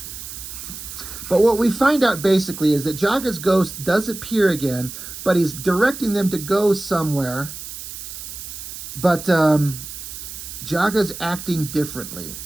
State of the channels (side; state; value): right; noise; hiss, 10 dB below the sound